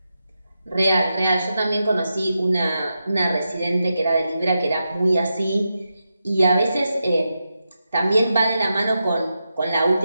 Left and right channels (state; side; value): inverted; both; correlation -0.88